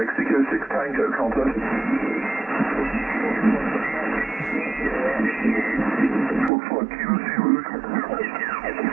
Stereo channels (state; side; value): drops out; left; at 6.5 s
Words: 6 Tango, contact. Looks like Kilo Zero.